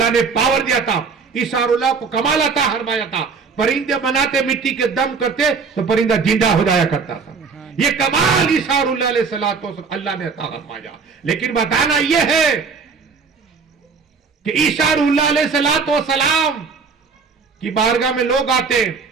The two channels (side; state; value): left; quieter; 5.1 dB